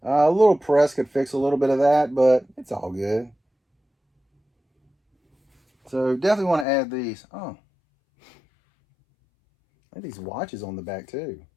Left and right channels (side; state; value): right; drops out; at 6.7 s